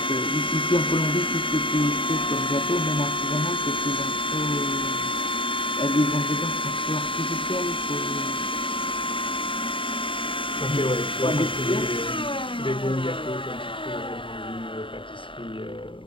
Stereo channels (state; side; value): late; right; 0.25 ms